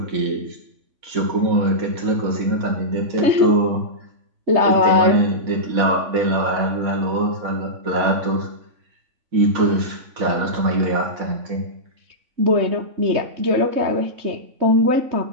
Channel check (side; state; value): left; late; 3.5 ms